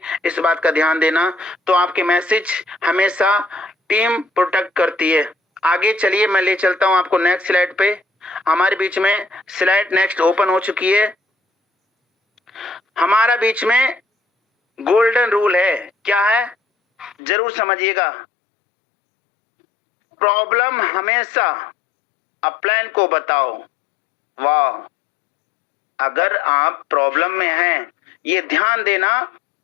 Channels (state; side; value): drops out; right; at 17.2 s